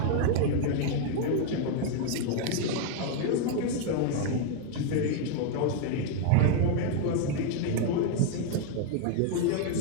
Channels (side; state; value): both; different; correlation 0.00